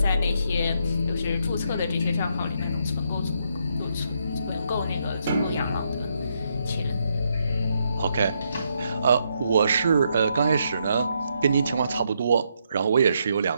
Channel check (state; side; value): inverted; both; correlation -0.77